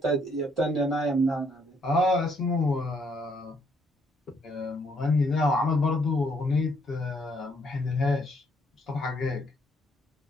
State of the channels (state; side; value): normal; both; correlation 0.69